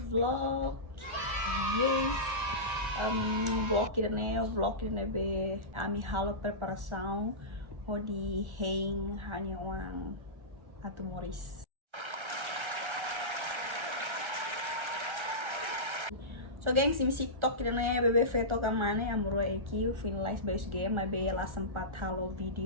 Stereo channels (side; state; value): left; late; 1.3 ms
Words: vlog. Yes. Vlog idane be ami halo preparação hodi hein hanya wang atu Moris. So gengs, imi TikTok idane bebe feto kamane amuro eki finalize base game my be la sempat halo